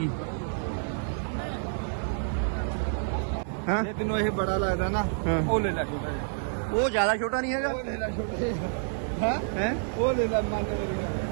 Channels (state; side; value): silent; left; digital silence